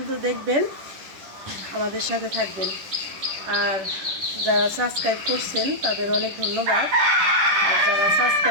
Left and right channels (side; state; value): left; late; 10 ms